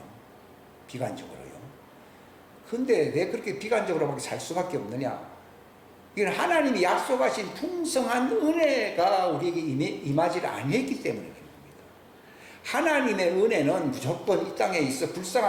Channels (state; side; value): identical; both; correlation 1.00